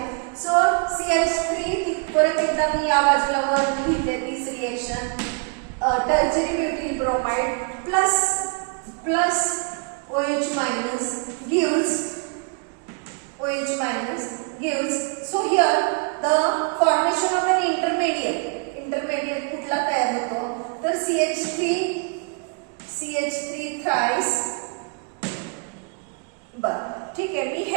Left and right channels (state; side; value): quieter; left; 39.1 dB